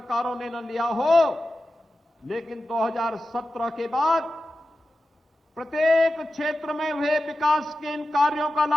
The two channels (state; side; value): normal; both; correlation 0.93